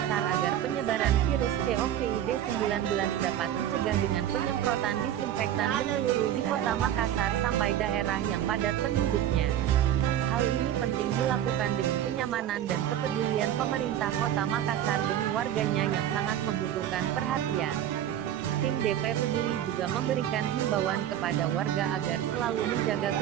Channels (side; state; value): left; quieter; 11.1 dB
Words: agar penyebaran virus COVID-19 dapat dicegah dengan penyemprotan disinfektan menyeluruh di kota Makassar sampai daerah yang padat penduduknya. Hal ini penting dilakukan demi kenyamanan dan kepedulian pemerintah kota Makassar demi warganya yang sangat membutuhkan perhatian. Tim DP Peduli juga memberikan himbauan kepada warga agar selalu menjaga